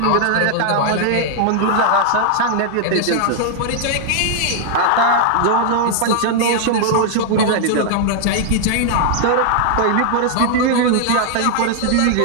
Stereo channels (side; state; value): both; different; correlation 0.00